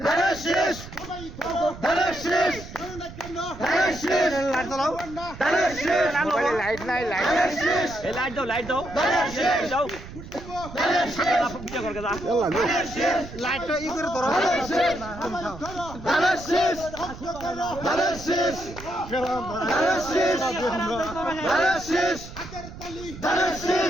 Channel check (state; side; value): noise; right; rumble, 14 dB below the sound